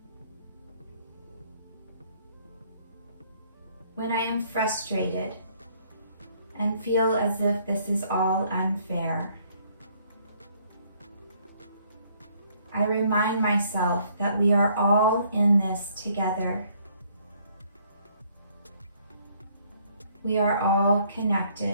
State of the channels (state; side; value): inverted; both; correlation -0.65